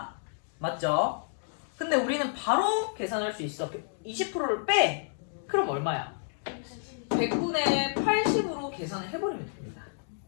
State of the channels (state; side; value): silent; right; digital silence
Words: 맞죠? 근데 우리는 바로 계산할 수 있어. 20%를 빼. 그럼 얼마야? 100분의 80으로 계산을 해버리면 됩니다.